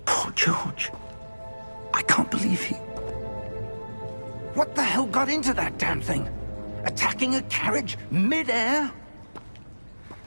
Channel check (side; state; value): both; inverted; correlation -1.00